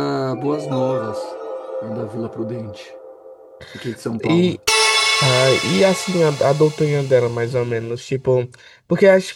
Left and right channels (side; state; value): both; identical; correlation 1.00